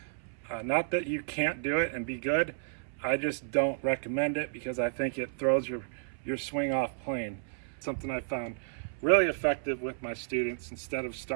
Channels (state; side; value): silent; left; 56 dB below the other